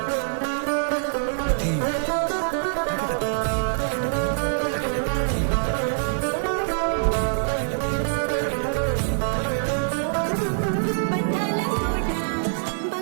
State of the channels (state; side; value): silent; left; digital silence